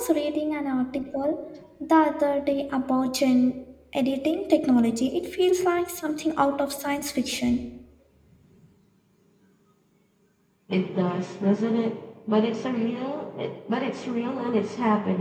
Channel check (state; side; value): identical; both; correlation 1.00